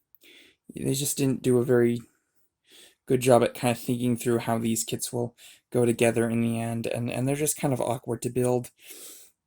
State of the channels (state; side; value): identical; both; correlation 1.00